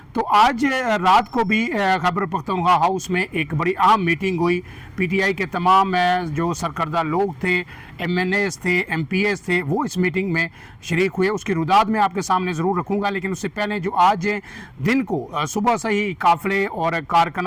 तो आज रात को भी खैबर पख्तूनख्वा हाउस में एक बड़ी अहम मीटिंग हुई। पीटीआई के तमाम जो सरकर्दा लोग थे, एमएनएस थे, एमपीएस थे, वो इस मीटिंग में शरीक हुए। उसकी रुदाद मैं आपके सामने ज़रूर रखूँगा, लेकिन उससे पहले जो आज दिन को सुबह से ही काफ़िले और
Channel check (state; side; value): identical; both; correlation 1.00